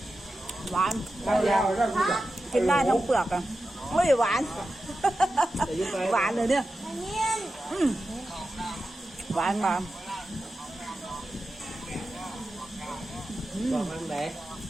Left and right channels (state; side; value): normal; both; correlation 0.92